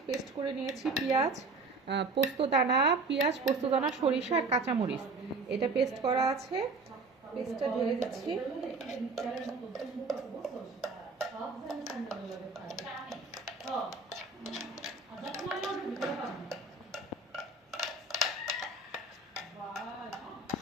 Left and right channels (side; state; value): left; quieter; 3.7 dB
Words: পেস্ট করে নিয়েছি পেঁয়াজ, পোস্তদানা, পোস্তদানা, সরিষা আর কাঁচামরিচ। এটা পেস্ট করা আছে, পেস্টটা ঢেলে দিচ্ছি।